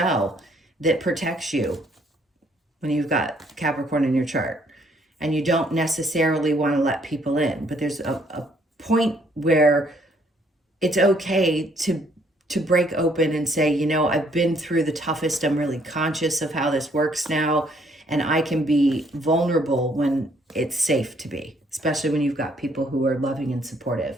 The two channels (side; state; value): both; normal; correlation 0.66